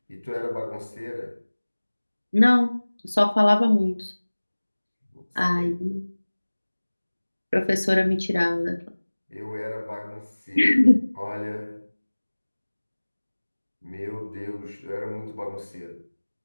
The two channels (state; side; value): inverted; both; correlation -1.00